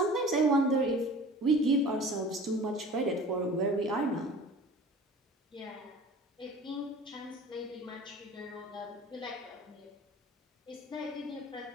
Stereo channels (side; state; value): both; normal; correlation 0.42